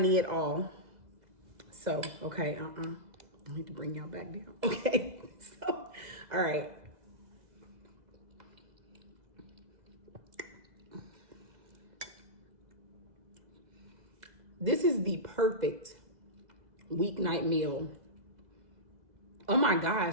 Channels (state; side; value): late; left; 2.0 ms